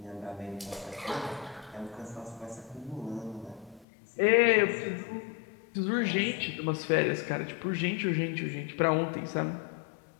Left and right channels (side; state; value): right; drops out; at 3.9 s